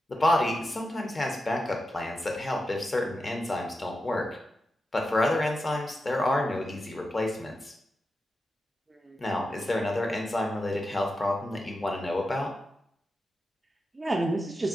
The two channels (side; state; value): both; normal; correlation 0.89